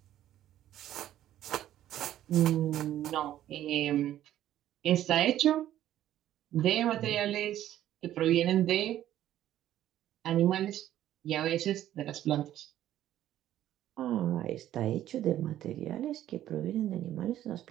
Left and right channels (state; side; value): quieter; left; 12.4 dB